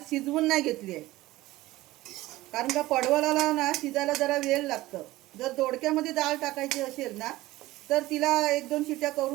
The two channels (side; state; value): left; quieter; 17.7 dB